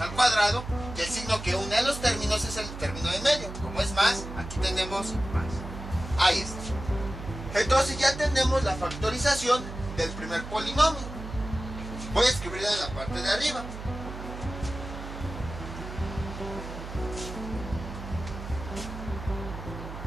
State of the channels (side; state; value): right; noise; hum, 10 dB below the sound